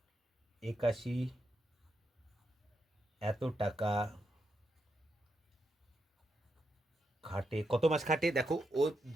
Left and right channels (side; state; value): both; normal; correlation 0.83